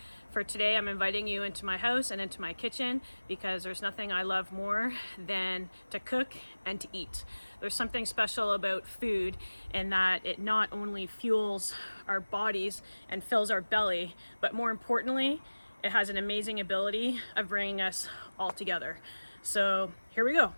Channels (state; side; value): inverted; both; correlation -1.00